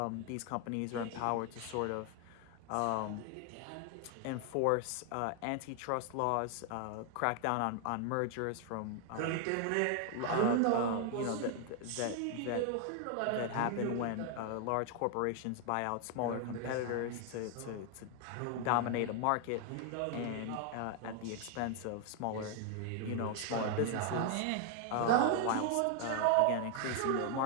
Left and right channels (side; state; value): both; different; correlation 0.00